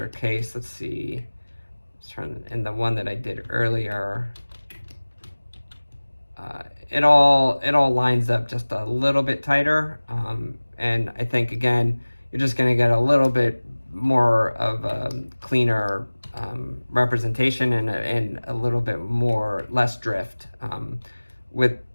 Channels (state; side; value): inverted; both; correlation -1.00